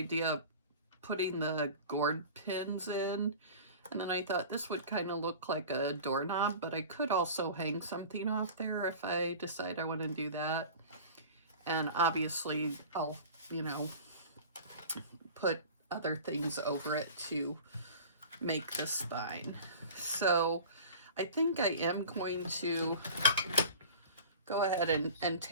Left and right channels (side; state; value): both; inverted; correlation -0.39